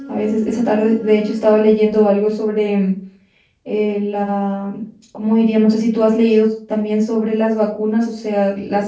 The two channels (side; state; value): both; identical; correlation 1.00